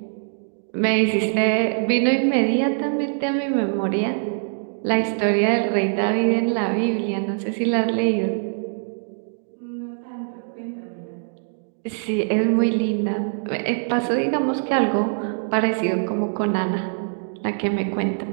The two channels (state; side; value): silent; left; digital silence